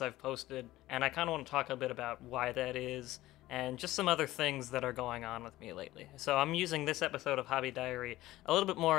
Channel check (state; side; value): quieter; right; 16.6 dB